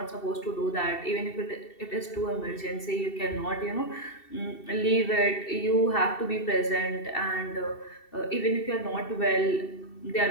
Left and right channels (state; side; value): late; right; 2.7 ms